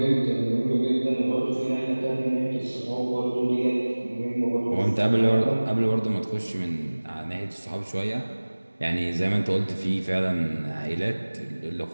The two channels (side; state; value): both; inverted; correlation -1.00